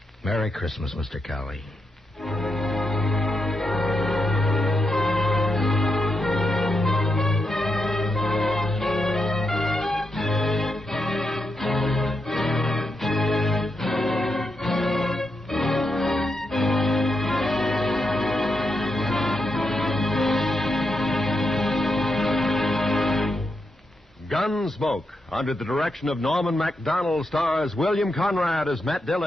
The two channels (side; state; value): both; normal; correlation 0.84